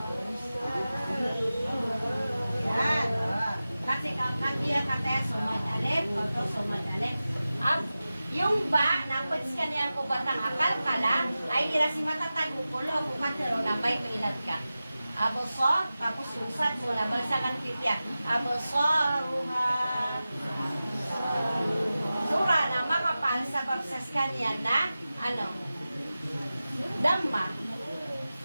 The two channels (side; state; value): both; inverted; correlation -0.95